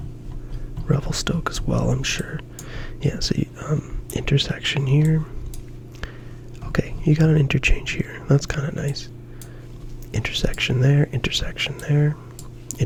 Revelstoke as well, I'm sure. Yeah, so intersection here. Okay, you got an interchange here. That's kind of nice. Intersection there, intersection there,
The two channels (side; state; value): both; identical; correlation 1.00